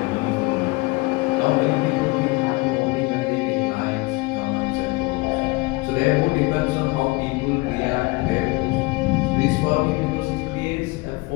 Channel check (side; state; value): right; quieter; 24.5 dB